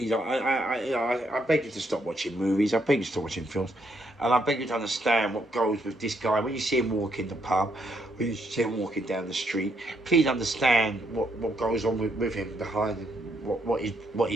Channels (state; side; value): normal; both; correlation 0.74